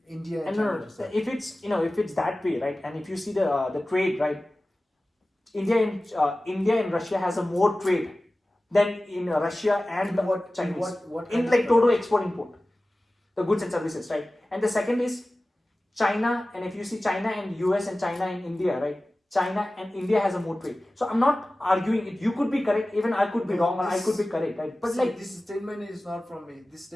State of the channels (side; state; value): both; normal; correlation 0.97